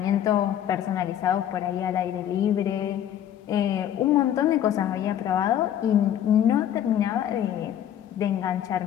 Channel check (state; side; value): quieter; right; 10.5 dB